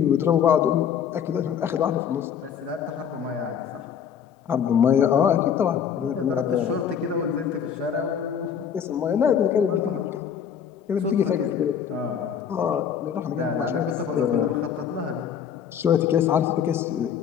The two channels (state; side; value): quieter; right; 8.1 dB